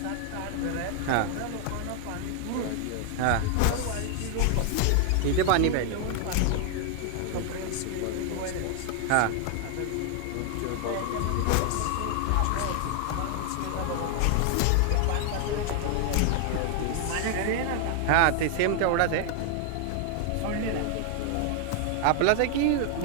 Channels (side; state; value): both; different; correlation 0.00